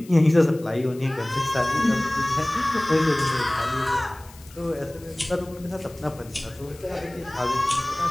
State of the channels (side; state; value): left; noise; hiss, 23 dB below the sound